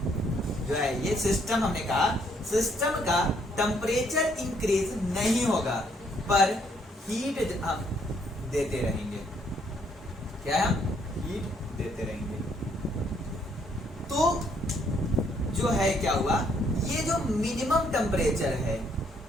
जो है, ये सिस्टम हमने कहा सिस्टम का टेम्परेचर इंक्रीज नहीं होगा पर हीट हम देते रहेंगे। क्या है? हम हीट देते रहेंगे। तो जो है क्या हुआ, ये जो मिनिमम टेम्परेचर है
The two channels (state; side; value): normal; both; correlation 0.69